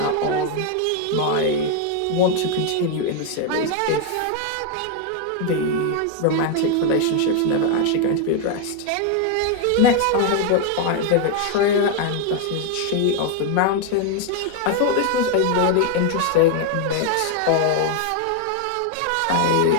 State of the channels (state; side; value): different; both; correlation 0.01